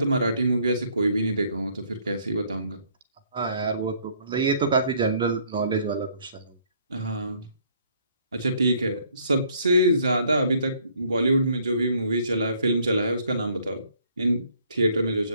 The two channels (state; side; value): inverted; both; correlation -0.64